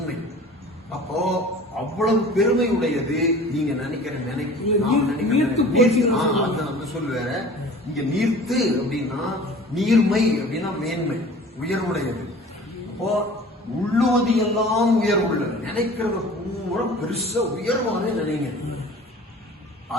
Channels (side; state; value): both; normal; correlation 0.44